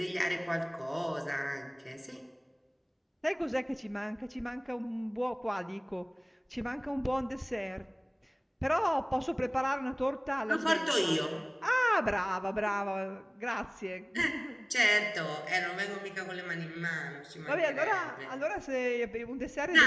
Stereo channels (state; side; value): identical; both; correlation 1.00